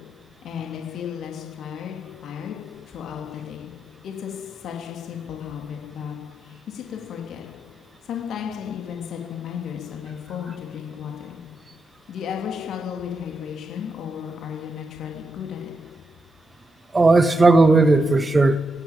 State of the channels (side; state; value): both; normal; correlation 0.84